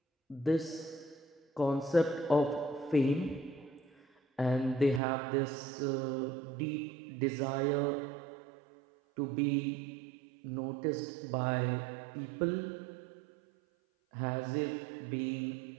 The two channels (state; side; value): drops out; left; at 5.0 s